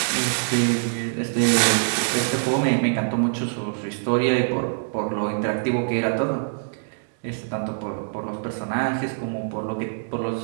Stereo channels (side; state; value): left; silent; digital silence